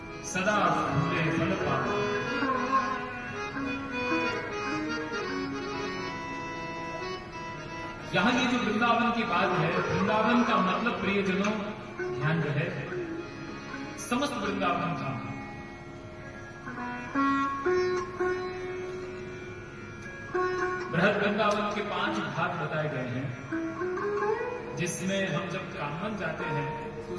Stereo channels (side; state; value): both; identical; correlation 1.00